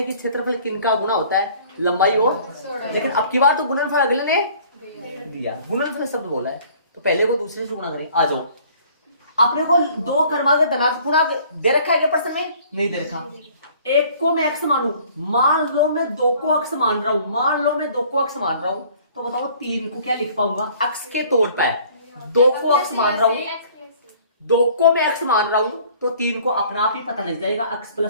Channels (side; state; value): both; inverted; correlation -0.54